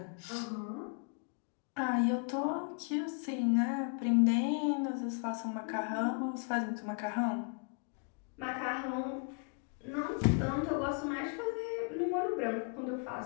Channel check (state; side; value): quieter; right; 40.0 dB